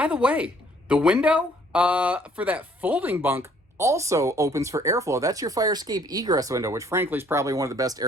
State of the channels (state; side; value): normal; both; correlation 0.61